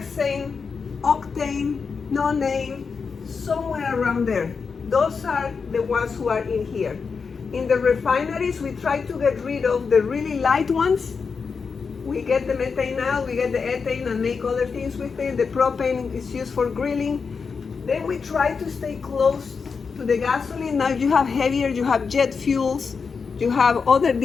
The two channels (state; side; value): quieter; right; 5.3 dB